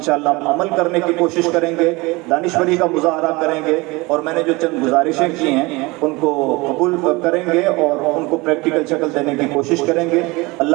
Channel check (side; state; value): left; quieter; 23.7 dB